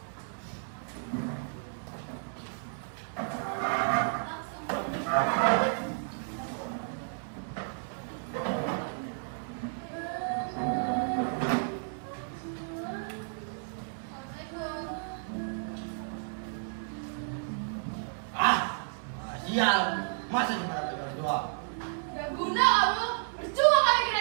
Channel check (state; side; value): silent; left; 56 dB below the other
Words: Sial, masa gimana bagi orang tua? Gak guna kamu. Percuma kami